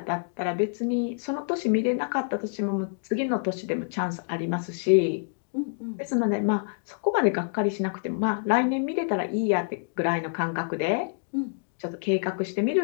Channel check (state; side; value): silent; right; digital silence